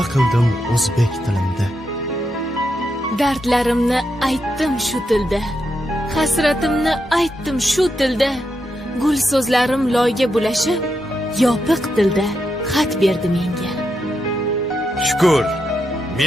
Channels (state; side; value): normal; both; correlation 0.84